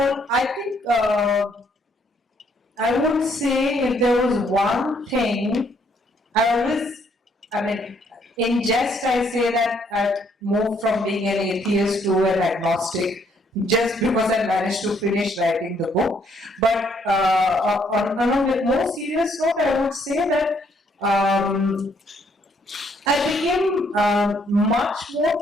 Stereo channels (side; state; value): both; normal; correlation 0.69